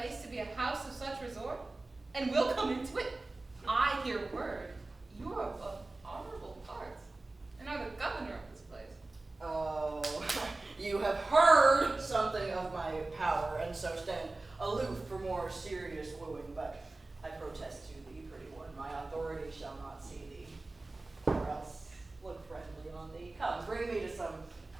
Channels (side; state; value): left; quieter; 3.1 dB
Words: to be a house of such resort? And we'll come into it. I hear word. You are of honorable parts, and are the governor of this place. Oh, you have heard something of my power, and so stand aloof for more serious wooing, but I protest to thee, pretty one, my authority shall not see thee, or else look friendly on thee. Come, bring me to some